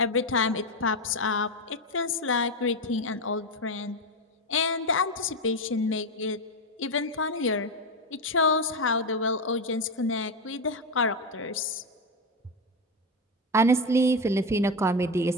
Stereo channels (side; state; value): both; normal; correlation 0.13